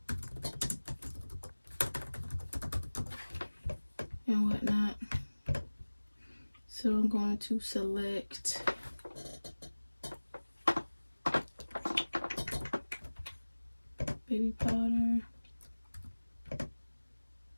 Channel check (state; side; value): inverted; both; correlation -1.00